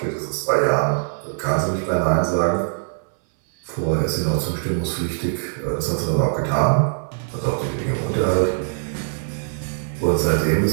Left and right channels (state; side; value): silent; left; 64 dB below the other